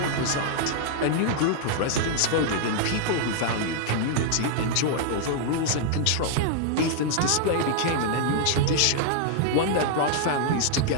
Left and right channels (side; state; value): both; different; correlation -0.01